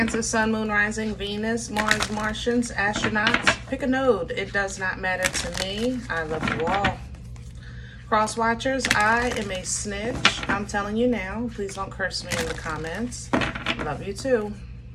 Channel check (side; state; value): both; identical; correlation 1.00